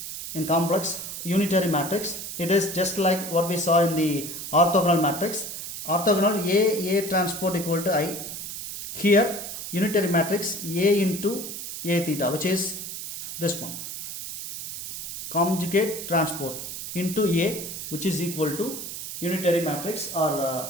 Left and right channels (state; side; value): noise; right; hiss, 8 dB below the sound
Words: in complex unitary matrix. It is just like what we saw in the orthogonal matrix. Orthogonal a transport equal to I. Here unitary matrix a into a theta, which is this one, conjugate transport into a, which is equal to unitary matrix